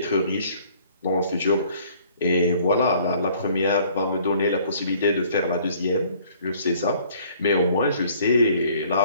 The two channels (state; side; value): inverted; both; correlation -0.58